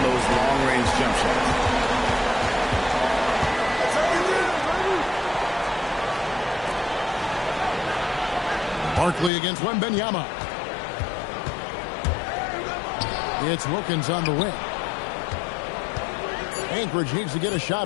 those long-range jump shots. Barkley against Wembanyama. It's Wilkins on the wing. Anchorage needs to get a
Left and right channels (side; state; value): right; drops out; at 9.3 s